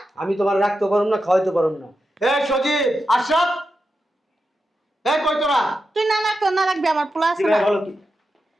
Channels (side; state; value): both; normal; correlation 0.89